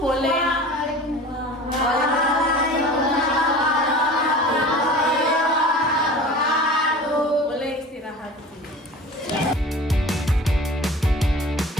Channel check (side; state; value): both; normal; correlation 0.40